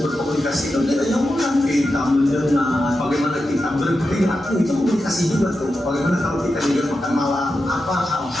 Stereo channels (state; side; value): normal; both; correlation 0.89